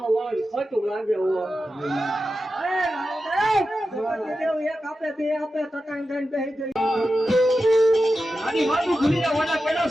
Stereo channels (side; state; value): both; normal; correlation 0.91